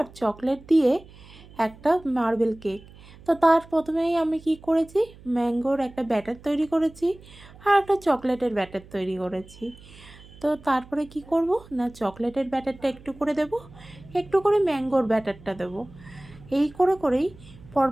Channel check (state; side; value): noise; right; hum, 21 dB below the sound